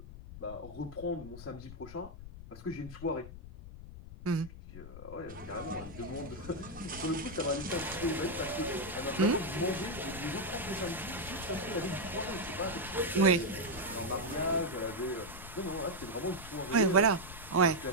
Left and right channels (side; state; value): left; noise; rumble, 13 dB below the sound